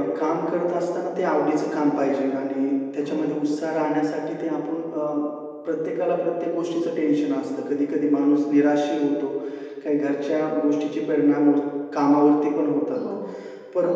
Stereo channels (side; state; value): both; identical; correlation 1.00